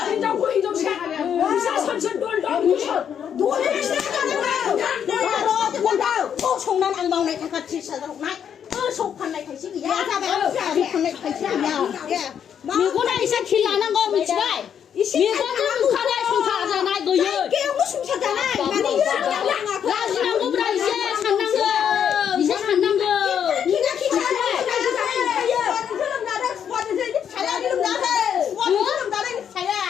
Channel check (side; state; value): right; quieter; 8.4 dB